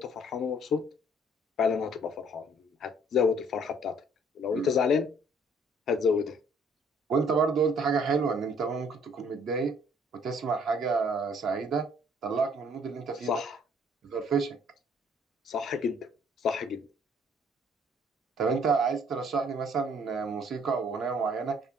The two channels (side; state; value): both; normal; correlation 0.60